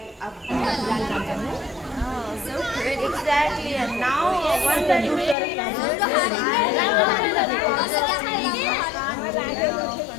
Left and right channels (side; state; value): right; drops out; at 5.4 s